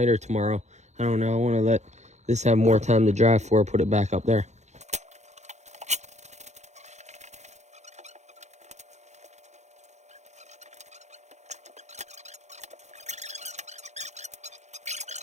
or tomorrow. I don't know. I want to let this have more time to dry before I put it back up there.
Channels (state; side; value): late; left; 0.33 ms